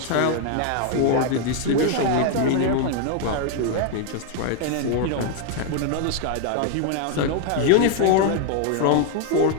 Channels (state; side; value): different; both; correlation 0.01